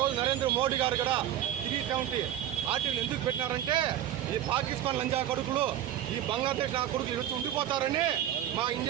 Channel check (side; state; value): left; quieter; 11.5 dB